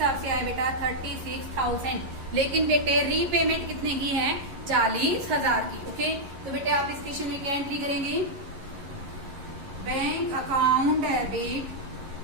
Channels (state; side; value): late; left; 11 ms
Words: से आए बेटा 36,000। लेकिन बेटे रीपेमेंट कितने की है, 40,000 की। ओके, तो बेटे आप इस क्वेश्चन में क्या एंट्री करेंगे, bank account debit